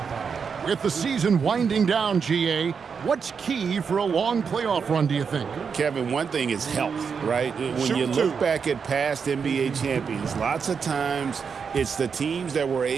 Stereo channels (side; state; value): left; quieter; 6.1 dB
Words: With the season winding down, GA, what's key for a long playoff run, do you think? Kevin, one thing is health, right? When you look back at past NBA champions, lots of times it's the teams that were